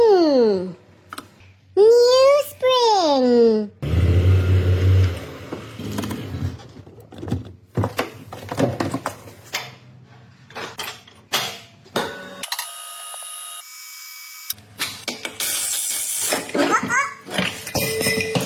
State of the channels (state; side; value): identical; both; correlation 1.00